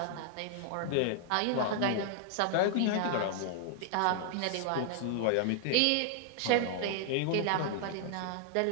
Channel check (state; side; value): different; both; correlation -0.01